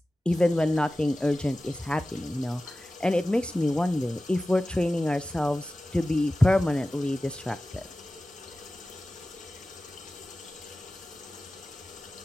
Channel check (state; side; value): normal; both; correlation 0.96